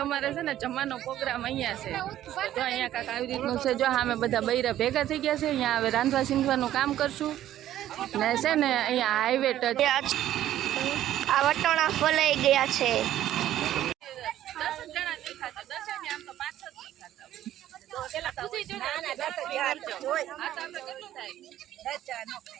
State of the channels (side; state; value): left; quieter; 12.6 dB